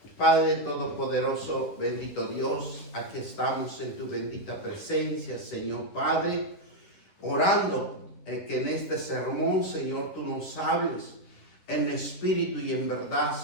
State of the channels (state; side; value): late; right; 11 ms